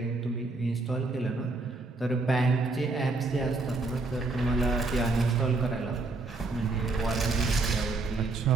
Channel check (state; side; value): quieter; left; 3.5 dB